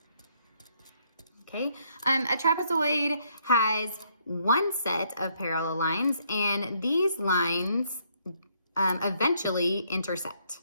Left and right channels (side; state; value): both; inverted; correlation -0.70